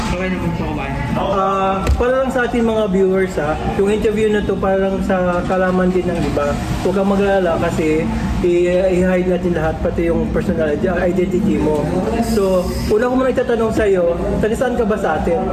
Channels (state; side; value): identical; both; correlation 1.00